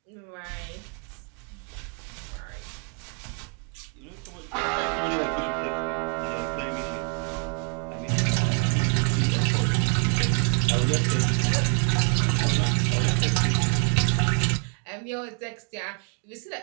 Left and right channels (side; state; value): left; quieter; 39.7 dB